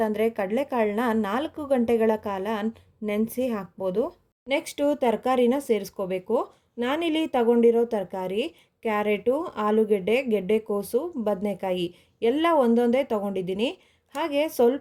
ಕಡಲೆಕಾಳನ್ನ 4 ಗಂಟೆಗಳ ಕಾಲ ನೆನೆಸಿ ಹಾಕ್ಬೋದು. ನೆಕ್ಸ್ಟು ತರಕಾರಿನ ಸೇರಿಸ್ಕೋಬೇಕು. ನಾನಿಲ್ಲಿ ತಗೊಂಡಿರೋ ತರಕಾರಿ ಕ್ಯಾರೆಟು, ಆಲೂಗೆಡ್ಡೆ, ಗೆಡ್ಡೆಕೋಸು, ಬದನೆಕಾಯಿ ಎಲ್ಲ ಒಂದೊಂದೇ ತೊಗೊಂಡಿದ್ದೀನಿ. ಹಾಗೆ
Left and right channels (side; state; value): both; identical; correlation 1.00